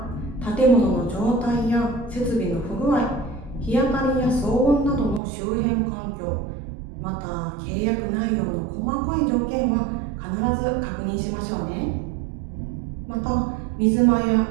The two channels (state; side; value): drops out; left; at 5.2 s